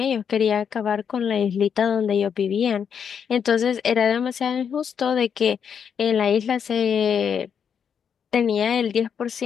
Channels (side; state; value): right; quieter; 7.4 dB